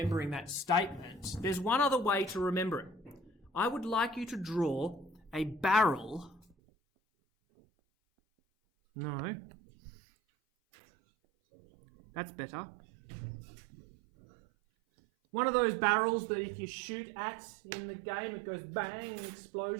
that statement, there's one other way to remember it. I would like you to draw a barrel. No. That's better. One of those barrels that if you shoot at in the game, it goes bang and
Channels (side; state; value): left; drops out; at 6.6 s